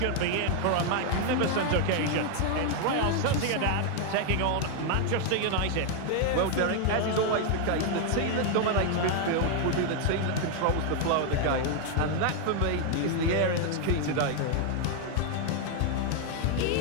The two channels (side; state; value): both; different; correlation 0.00